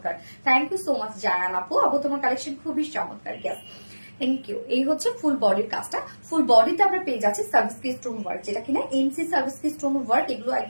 thank you so much Zayan আপু। আপু তোমার কালেকশন খুবই চমৎকার, গ্যাস থ্যাংক ইউ। এই হচ্ছে ফুল বডির কাজটা। ফুল বডিতে আমরা পেয়ে যাচ্ছি সার্ভিস কি স্টোন ওয়ার্ক, যেটা কিনা এমসি সার্ভিস কি স্টোন ওয়ার্ক। এগুলো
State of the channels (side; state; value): both; inverted; correlation -1.00